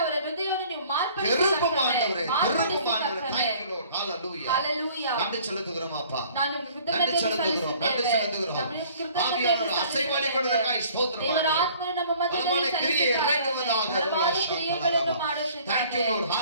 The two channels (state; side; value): inverted; both; correlation -0.54